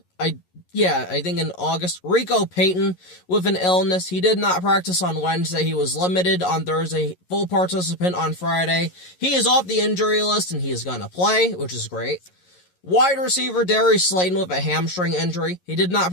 I think in August, Rico Payton with an illness. He did not practice on Wednesday. He was limited on Thursday, full participant on Friday. He is off the injury list, and he is going to play, which is great. Wide receiver Darius Slayton with a hamstring injury. He did not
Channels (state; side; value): late; right; 11 ms